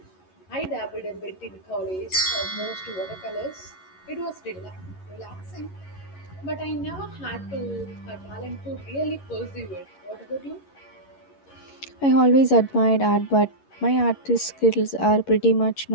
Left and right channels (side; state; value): right; late; 11 ms